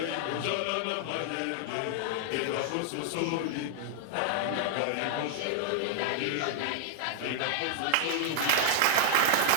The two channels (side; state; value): both; different; correlation -0.01